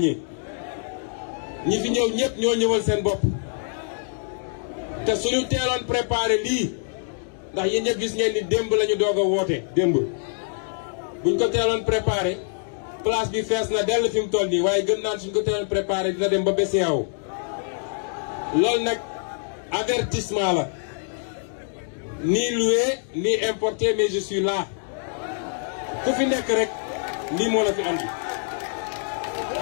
ñi fi ñëw ñëpp ñoo ñëwal seen bopp te suñu teeloon préparé lii ndax yéen ñëpp gis ngeen ni démb la ñu doog a woote démb buñ ko teeloon préparé place bi fees na dell fi mu toll nii waaye gën naan suñ ko teeloon préparé dina dem ba BCEAO loolu nag avertissement la ni loué ni importé mais je suis là ku fi nekk rek lii moo la fi andi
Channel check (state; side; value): silent; right; digital silence